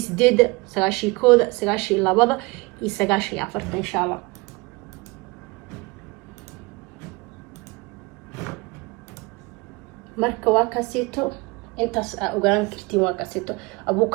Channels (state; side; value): quieter; left; 25.0 dB